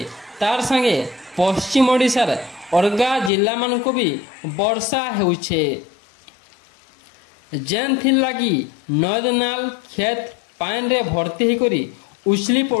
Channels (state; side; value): drops out; right; at 3.3 s